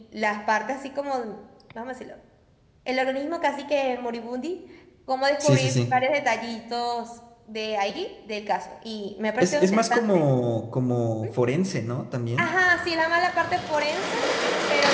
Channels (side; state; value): both; identical; correlation 1.00